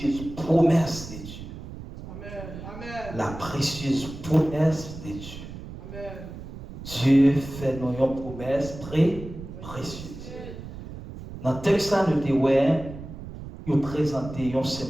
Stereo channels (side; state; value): right; noise; rumble, 12 dB below the sound